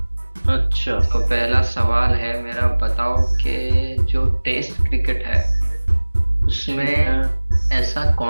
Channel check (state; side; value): inverted; both; correlation -1.00